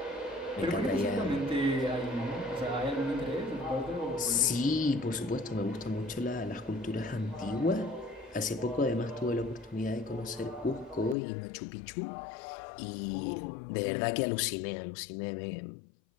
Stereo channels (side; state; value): right; drops out; at 11.2 s